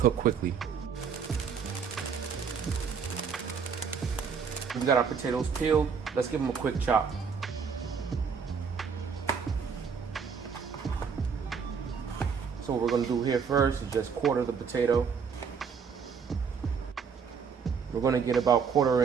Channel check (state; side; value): quieter; left; 6.3 dB